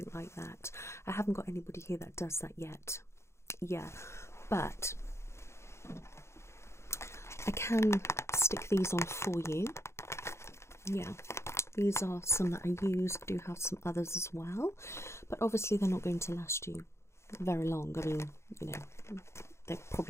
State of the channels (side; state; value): right; late; 0.13 ms